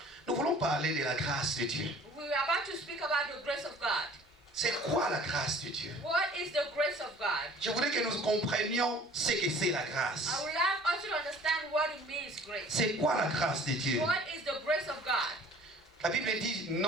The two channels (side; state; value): both; normal; correlation 0.50